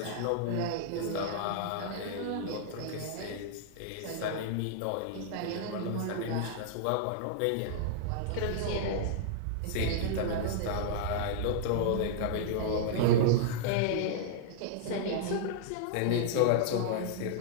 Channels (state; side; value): different; both; correlation -0.01